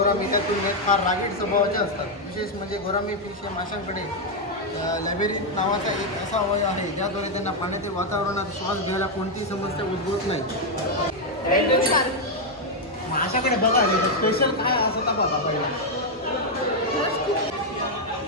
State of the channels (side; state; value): both; normal; correlation 0.01